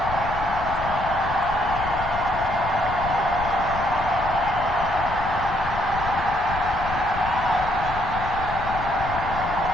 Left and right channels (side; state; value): left; noise; rumble, 9 dB below the sound